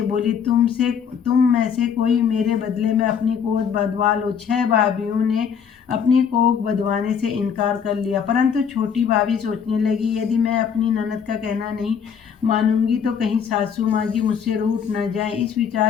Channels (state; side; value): quieter; right; 7.2 dB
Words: बोली, तुम में से कोई मेरे बदले में अपनी कोख बंधवा लो। 6 भाभियों ने अपनी कोख बंधवाने से इनकार कर लिया, परंतु छोटी भाभी सोचने लगी, यदि मैं अपनी ननद का कहना नहीं मानूंगी तो कहीं सासू माँ जी मुझसे रूठ न जाए। इस